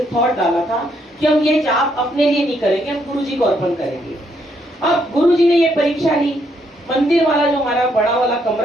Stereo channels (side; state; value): both; normal; correlation 0.74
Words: थॉट डाला था कि हम ये जाप अपने लिए नहीं करेंगे, हम गुरु जी को अर्पण करेंगे। अब गुरु जी ने ये परीक्षा ली। मंदिर वाला जो हमारा बड़ा वाला